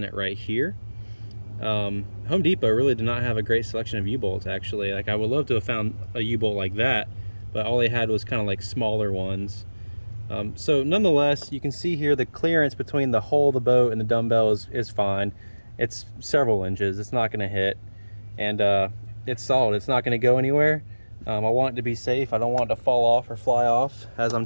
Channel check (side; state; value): both; inverted; correlation -1.00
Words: it right here. Home Depot really did not have a great selection of U-bolts, actually. Like, I would love to have found a U-bolt like that, but all they had was kind of like smaller ones. So nonetheless, you can see here the clearance between the hull of the boat and the dumbbell is fine. It's several inches. It's not going to hit, and it's solid. It's not going to go anywhere. I want it to be safe. I don't want it to fall off or fly off as